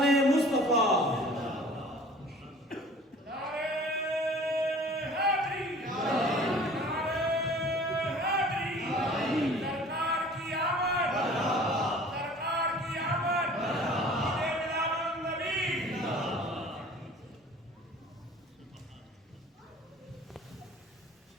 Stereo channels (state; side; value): normal; both; correlation 0.47